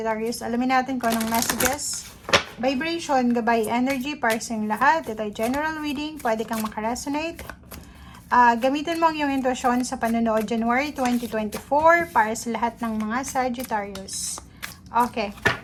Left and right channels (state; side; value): identical; both; correlation 1.00